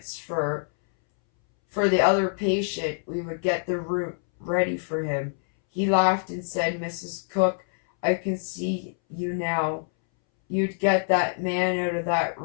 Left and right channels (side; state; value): right; silent; 61 dB below the other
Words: for the other patient, we would get the room ready for him. He laughed and said, "Mrs. Cocke, I can see you now. You'd get that man out of that